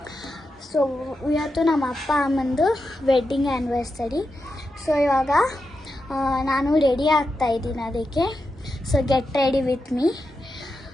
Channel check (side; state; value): both; normal; correlation 0.88